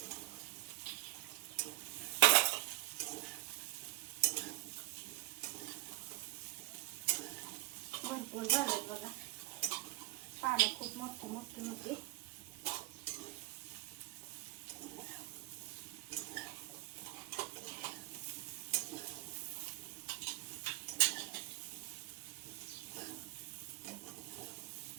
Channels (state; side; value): quieter; left; 19.9 dB